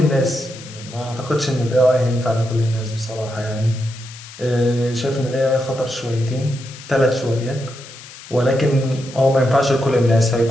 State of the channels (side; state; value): left; noise; hiss, 17 dB below the sound